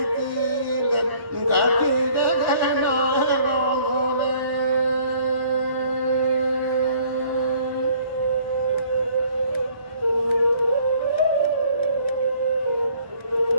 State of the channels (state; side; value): late; left; 1.1 ms